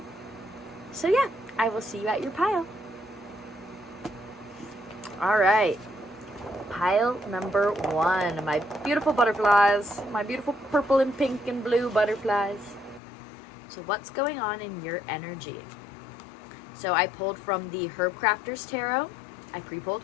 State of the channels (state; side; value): drops out; right; at 13.0 s